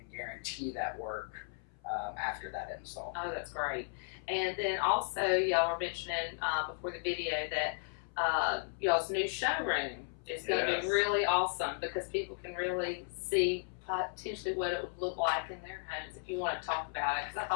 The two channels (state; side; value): silent; right; 54 dB below the other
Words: guarantee that work after that install. Oh, that's great. And then also, y'all were mentioning before the video that y'all's new showroom is going to Yes. be really awesome because people can really see potentially what it would look like in their homes. If you want to talk about it, because I